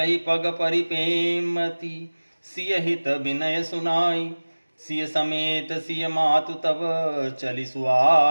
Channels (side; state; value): both; inverted; correlation -1.00